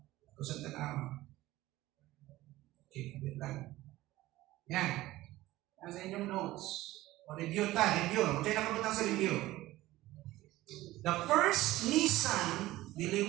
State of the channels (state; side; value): quieter; left; 17.0 dB